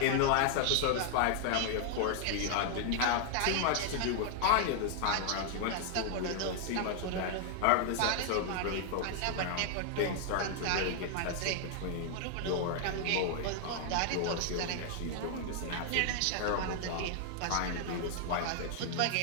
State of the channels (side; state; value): both; different; correlation 0.00